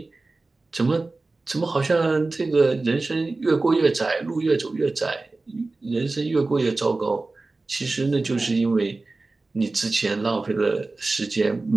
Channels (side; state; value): left; quieter; 3.4 dB